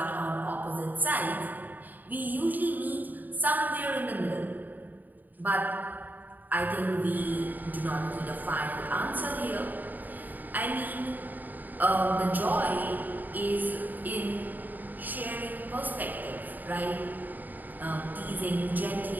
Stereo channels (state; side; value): late; left; 0.086 ms